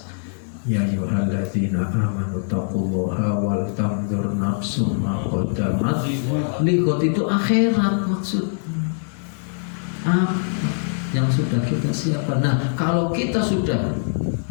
Ya ayyuhalladzina amanu taqullaha wal tanzur nafsum ma qaddamat lighad. Itu akhirat maksudnya. Apa yang sudah kita siapkan. Nah, kalau kita sudah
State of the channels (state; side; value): silent; right; digital silence